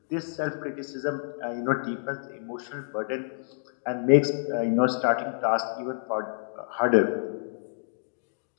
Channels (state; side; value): silent; right; digital silence